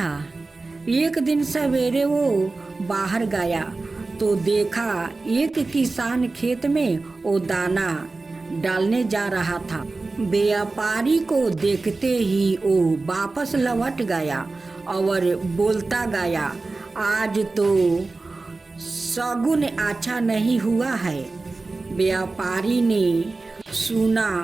एक दिन सवेरे वो बाहर गया तो देखा एक किसान खेत में वो दाना डालने जा रहा था। व्यापारी को देखते ही वो वापस लौट गया और बोलता गया, आज तो शगुन अच्छा नहीं हुआ है। व्यापारी ने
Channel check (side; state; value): left; quieter; 3.5 dB